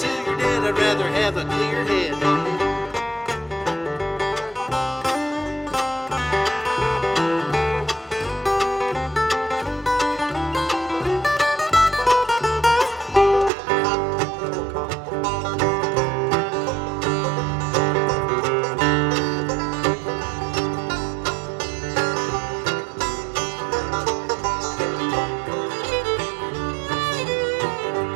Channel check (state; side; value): drops out; left; at 13.5 s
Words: you're dead. I'd rather have a clear head.